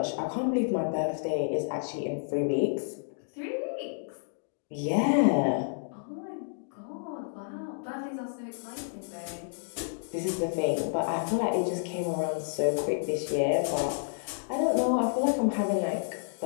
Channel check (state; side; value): silent; right; digital silence